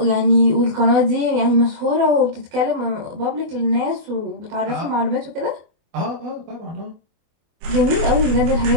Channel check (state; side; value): late; left; 24 ms